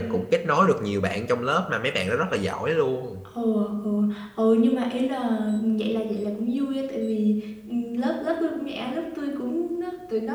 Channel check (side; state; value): both; identical; correlation 1.00